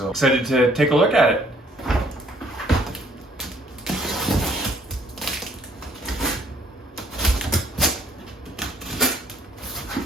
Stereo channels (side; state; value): both; normal; correlation 0.62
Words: excited to take a look at it.